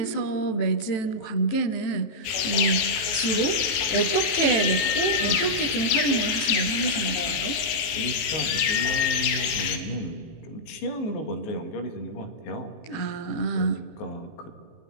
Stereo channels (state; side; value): late; right; 19 ms